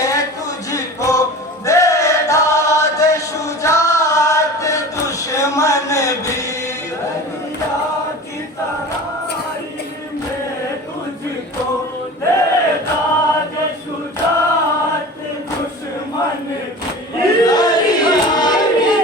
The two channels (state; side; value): normal; both; correlation 0.36